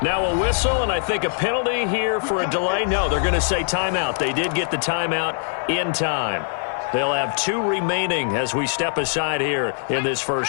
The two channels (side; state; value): right; silent; 62 dB below the other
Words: Now a whistle, and I think a penalty here for a delay. No, they're going to say timeout. They did get the timeout in time. They'll have 2 remaining as we step aside here in this